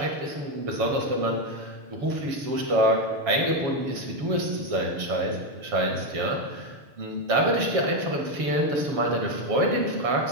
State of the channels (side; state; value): left; late; 7.1 ms